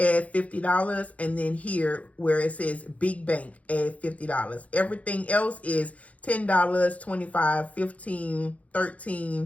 $50, and then here where it says big bank, add $50. Everything else is $10, $25, $15,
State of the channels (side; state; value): right; late; 0.067 ms